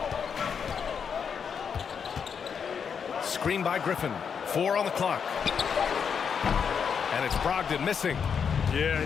Screen by Griffin. 4 on the clock. And it's Brogdon missing. Yeah, you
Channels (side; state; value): right; quieter; 6.8 dB